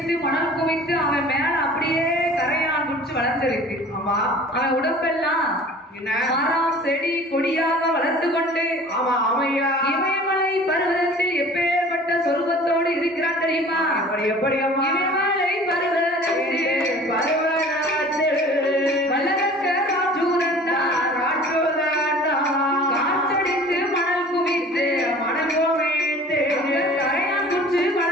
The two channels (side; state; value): both; normal; correlation 0.45